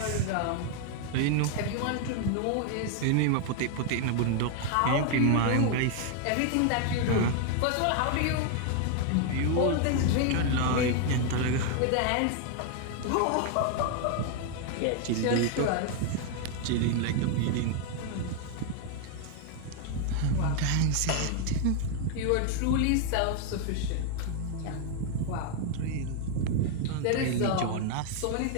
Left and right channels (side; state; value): both; different; correlation 0.00